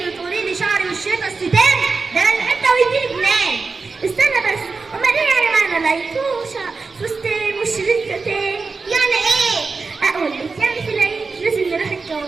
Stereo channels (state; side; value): quieter; left; 4.3 dB